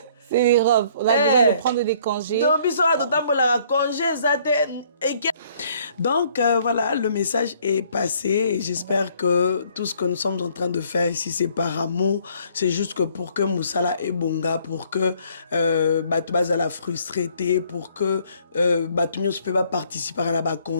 C'est l'Europe. On a besoin de prendre des congés. Donc, voilà, le message est passé et j'espère que tout ce que nous sommes en train de faire ici, c'est par amour. C'est juste que pour que Moussala et Bonga, pour que Batoubaza la frustrité, pour que Batoumio ne peut pas participer à la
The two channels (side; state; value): both; inverted; correlation -0.62